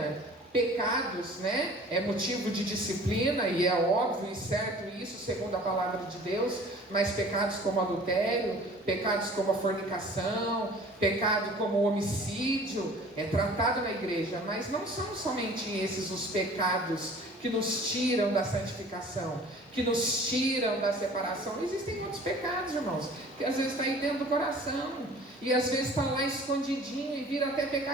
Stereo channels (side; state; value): both; normal; correlation 0.47